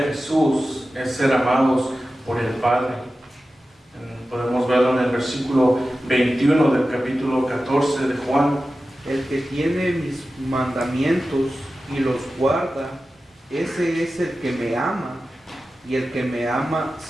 Jesús es ser amados por el Padre. Podemos verlo en el versículo 21 del capítulo 14 de Juan. El que tiene mis mandamientos y los guarda, ese es el que me ama, y el que me ama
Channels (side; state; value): both; normal; correlation 0.94